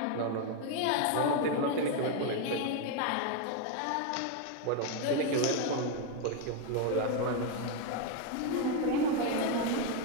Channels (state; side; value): different; both; correlation 0.01